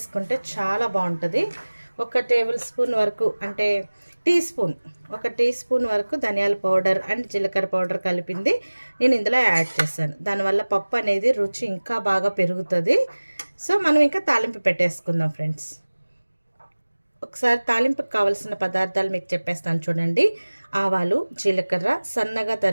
చాలా బాగుంటుంది. ఒక టేబుల్ స్పూన్ వరకు అంటే ఒక టీ స్పూన్ వరకు ధనియాల పౌడర్ అండ్ జీలకర్ర పౌడర్ కలిపింది నేను ఇందులో యాడ్ చేశాను. దానివల్ల పప్పు అనేది రుచి ఇంకా బాగా పెరుగుతుంది. సో మనం ఇంకా తాలింపు పెట్టేసుకుందాం ఫ్రెండ్స్. ఒకసారి తాలింపుకి కావాల్సిన పదార్థాలు మీకు చెప్పేస్తాను చూడండి. ఆవాలు, జీలకర్ర, సన్నగా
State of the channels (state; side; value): inverted; both; correlation -1.00